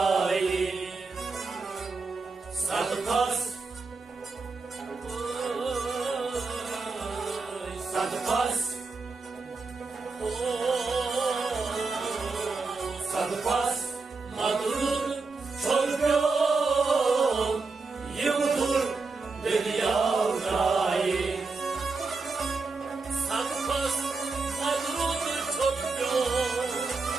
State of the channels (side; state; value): left; quieter; 4.1 dB